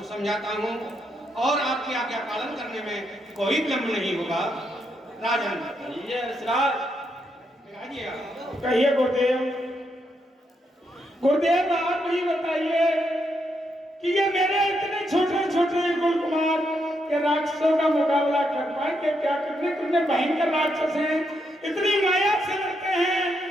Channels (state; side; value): normal; both; correlation 0.79